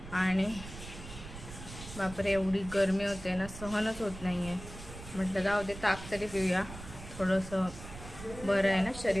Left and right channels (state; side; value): noise; right; rumble, 13 dB below the sound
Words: आणि बापरे एवढी गरमी होते ना, सहनच होत नाही आहे. म्हटलं जाऊ दे, ताक तरी पिऊया, थोडंसं बरं आहे ना,